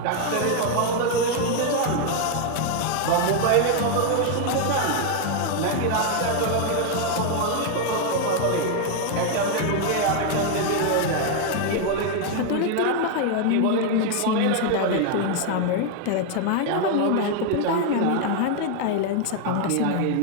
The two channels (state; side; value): different; both; correlation 0.01